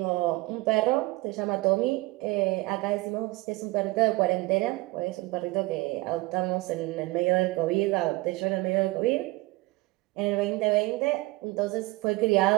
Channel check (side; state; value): left; quieter; 22.0 dB